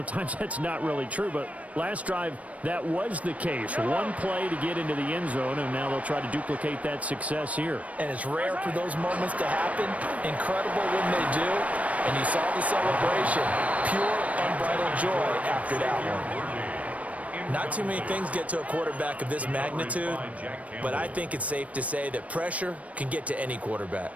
that's not really true, but last drive, that was the case. One play to get into the end zone, and now they'll try to duplicate that success here. And it's rare for those moments to happen. Incredible when they do. And you saw the celebration. Pure, unbridled joy after that one. Not too many things get to a quarterback of this magnitude, but I think it's safe to say that pressure can get to any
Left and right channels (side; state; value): left; late; 0.067 ms